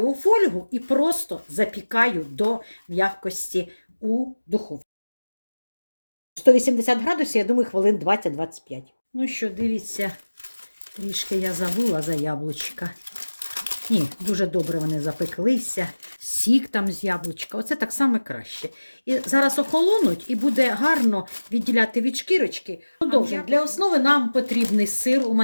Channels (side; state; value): both; inverted; correlation -1.00